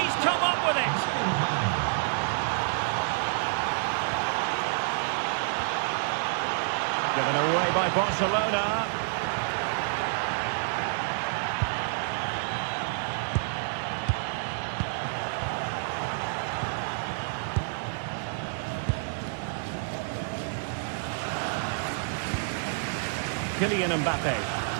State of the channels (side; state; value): left; silent; 58 dB below the other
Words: come up with it. Given away by Barcelona. Kylian Mbappe.